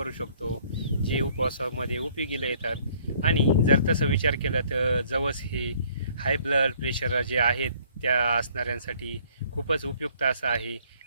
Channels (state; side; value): inverted; both; correlation -0.60